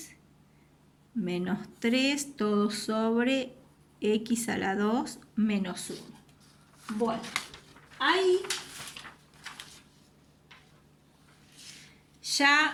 menos 3, todo sobre x a la 2 menos 1. Bueno, ahí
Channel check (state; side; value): identical; both; correlation 1.00